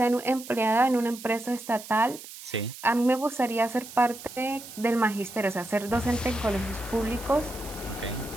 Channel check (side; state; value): right; noise; hiss, 14 dB below the sound